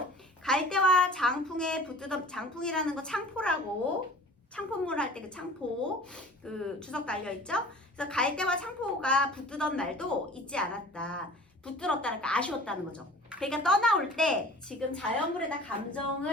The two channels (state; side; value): normal; both; correlation 0.44